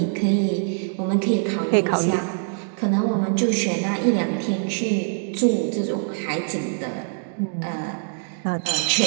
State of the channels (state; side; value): silent; left; 63 dB below the other